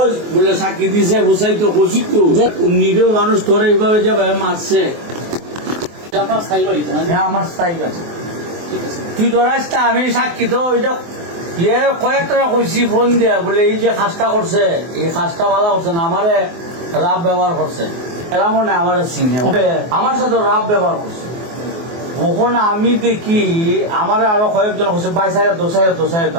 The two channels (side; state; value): left; late; 24 ms